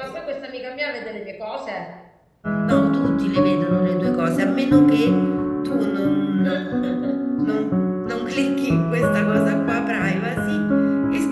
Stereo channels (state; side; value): identical; both; correlation 1.00